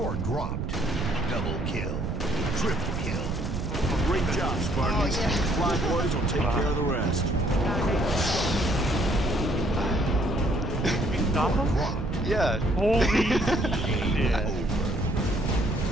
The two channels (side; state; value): right; noise; rumble, 3 dB below the sound